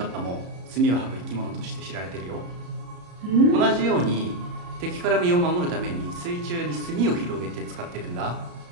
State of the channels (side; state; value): left; late; 34 ms